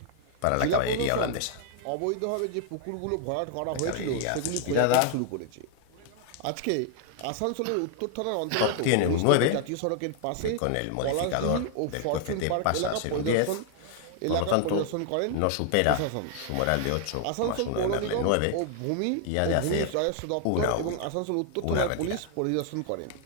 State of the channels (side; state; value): both; different; correlation 0.00